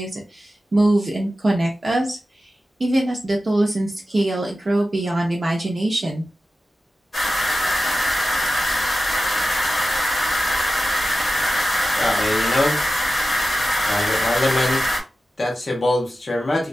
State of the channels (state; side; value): normal; both; correlation 0.93